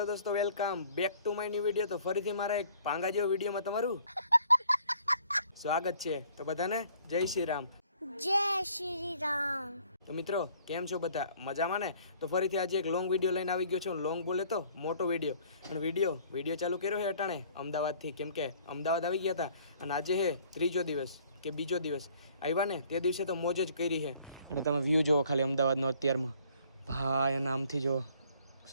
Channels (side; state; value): both; inverted; correlation -0.57